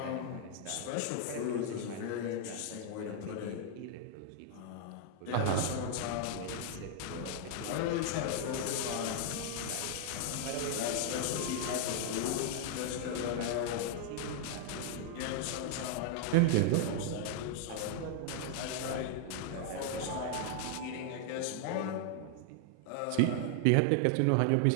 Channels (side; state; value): both; different; correlation 0.00